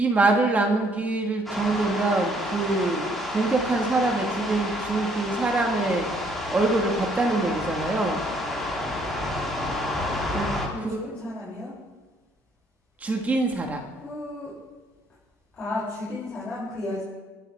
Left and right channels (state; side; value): normal; both; correlation 0.66